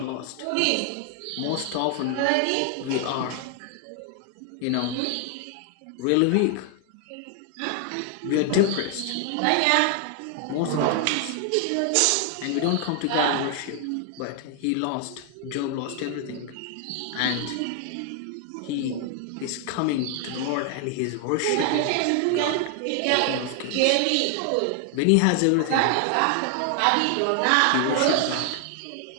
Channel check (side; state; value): both; different; correlation 0.00